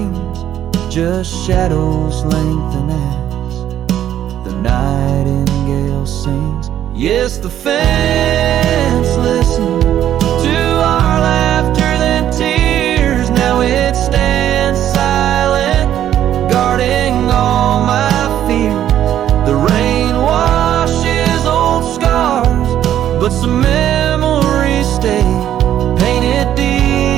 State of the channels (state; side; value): quieter; left; 11.1 dB